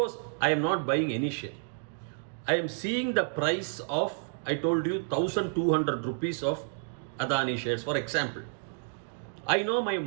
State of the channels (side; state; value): left; silent; digital silence